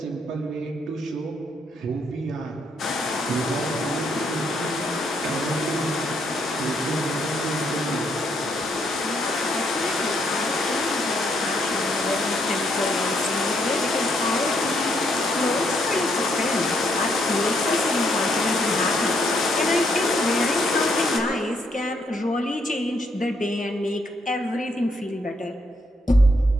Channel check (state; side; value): normal; both; correlation 0.74